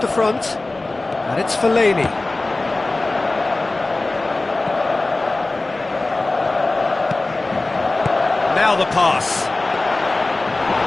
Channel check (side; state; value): right; quieter; 3.0 dB